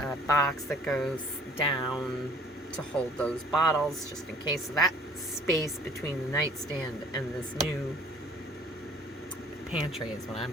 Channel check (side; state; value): both; normal; correlation 0.53